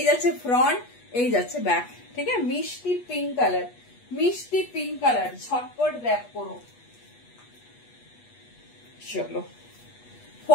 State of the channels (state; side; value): late; right; 8.3 ms